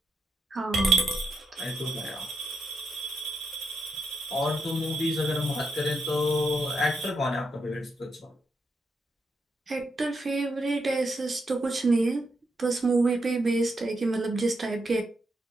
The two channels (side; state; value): both; normal; correlation 0.81